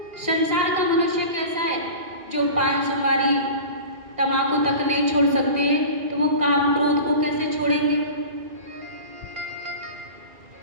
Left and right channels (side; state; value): left; late; 2.4 ms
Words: संसार का मनुष्य कैसा है जो पान सुपारी तंबाकू तक नहीं छोड़ सकते, तो वो काम क्रोध को कैसे छोड़ेंगे?